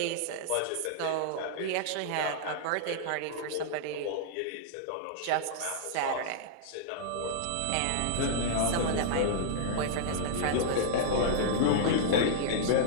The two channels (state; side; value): different; both; correlation -0.02